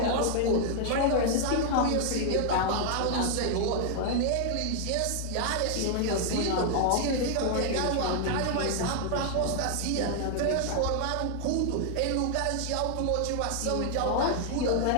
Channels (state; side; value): different; both; correlation 0.00